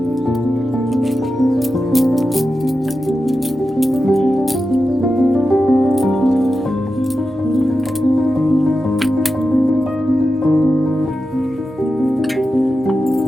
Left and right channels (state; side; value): normal; both; correlation 0.91